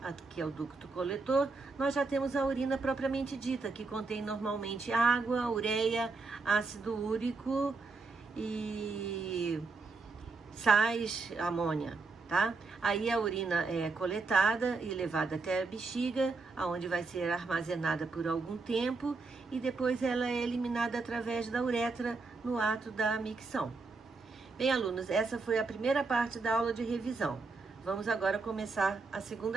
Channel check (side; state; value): left; quieter; 4.0 dB